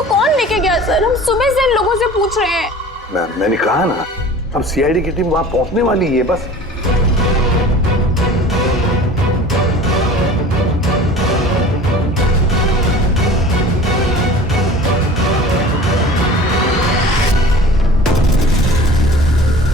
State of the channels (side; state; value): both; normal; correlation 0.42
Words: कौन लेके गया? सर हम सुबह से इन लोगों से पूछ रहे हैं। मैंने कहा ना, अब सीआईडी की टीम वहां पहुंचने वाली है बस।